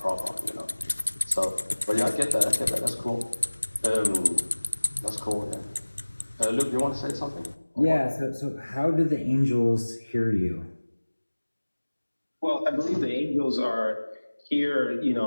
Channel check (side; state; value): both; inverted; correlation -1.00